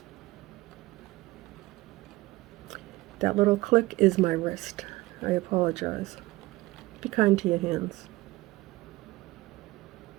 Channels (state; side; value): quieter; left; 19.7 dB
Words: That little click is my wrist. I apologize. Be kind to your hands.